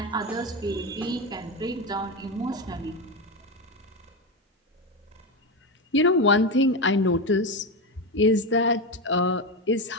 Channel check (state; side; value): normal; both; correlation 0.15